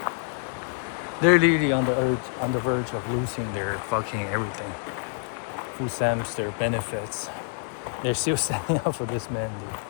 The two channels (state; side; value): silent; right; 60 dB below the other